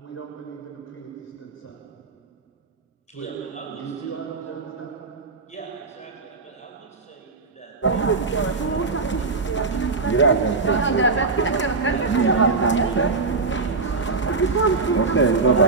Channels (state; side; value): quieter; left; 4.1 dB